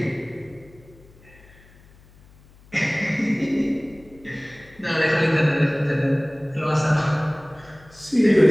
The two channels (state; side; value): noise; left; hum, 26 dB below the sound